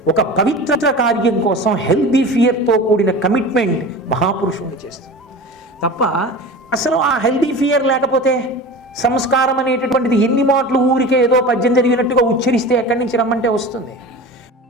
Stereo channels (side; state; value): both; normal; correlation 0.33